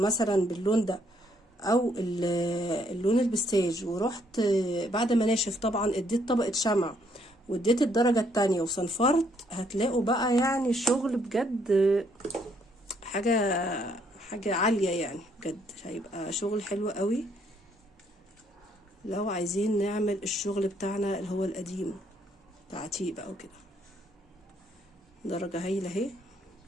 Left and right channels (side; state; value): both; normal; correlation 0.69